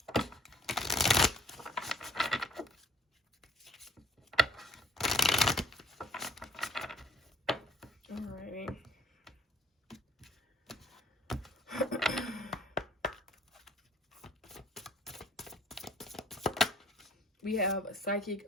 Alrighty. We have psychic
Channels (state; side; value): normal; both; correlation 0.59